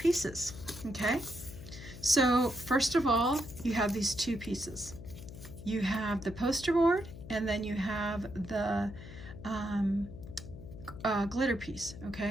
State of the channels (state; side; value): noise; left; hum, 13 dB below the sound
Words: okay? So first of all, you have these two pieces. You have the poster board, and then you have the glitter piece,